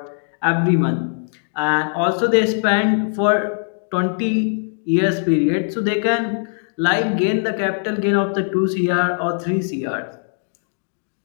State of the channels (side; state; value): right; silent; digital silence